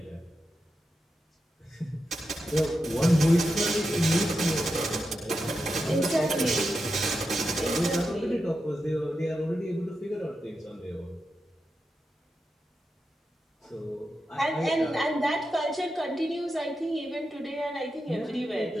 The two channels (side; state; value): both; normal; correlation 0.88